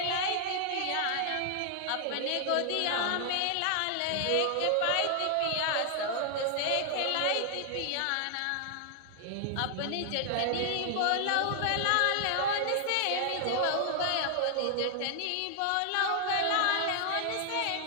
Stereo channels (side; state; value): both; different; correlation 0.00